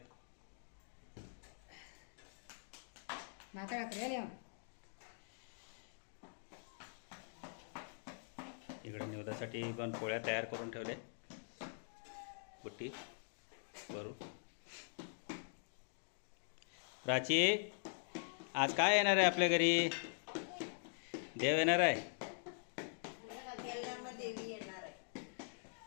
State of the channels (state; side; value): silent; right; digital silence